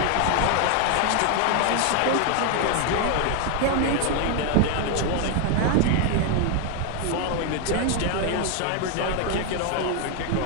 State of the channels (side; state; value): both; different; correlation 0.00